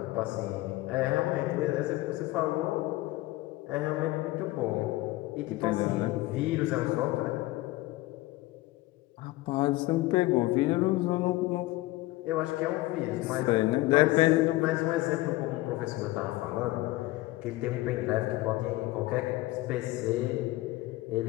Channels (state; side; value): quieter; right; 18.8 dB